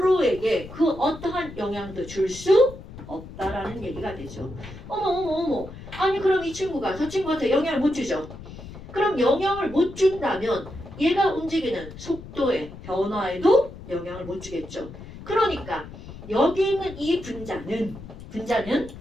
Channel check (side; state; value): left; noise; rumble, 14 dB below the sound